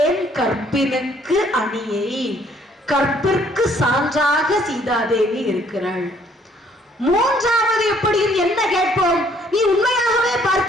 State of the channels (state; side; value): normal; both; correlation 0.63